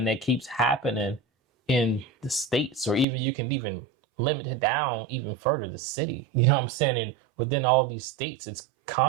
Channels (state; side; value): drops out; left; at 3.1 s